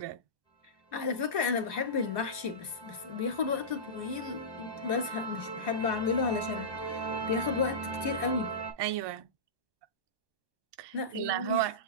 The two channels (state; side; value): late; left; 1.2 ms